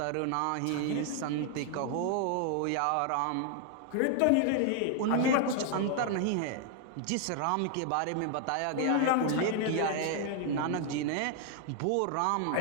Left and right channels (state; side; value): different; both; correlation 0.00